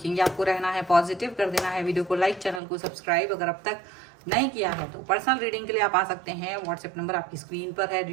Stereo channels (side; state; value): left; drops out; at 2.6 s